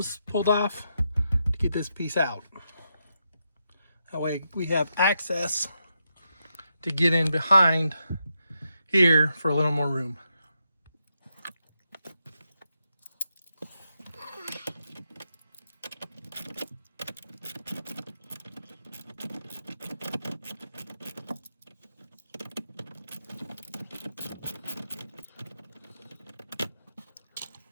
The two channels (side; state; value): both; inverted; correlation -0.84